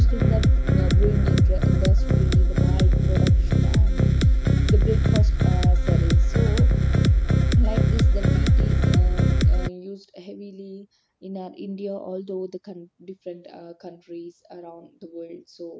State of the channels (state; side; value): identical; both; correlation 1.00